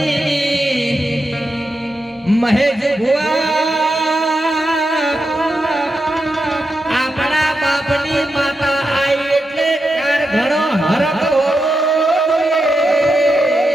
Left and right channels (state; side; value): normal; both; correlation 0.87